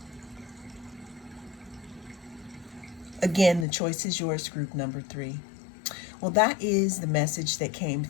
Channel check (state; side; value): drops out; right; at 3.7 s